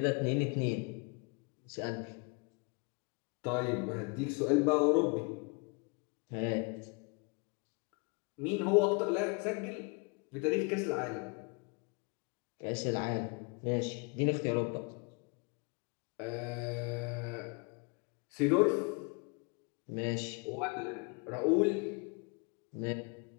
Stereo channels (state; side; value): quieter; right; 32.2 dB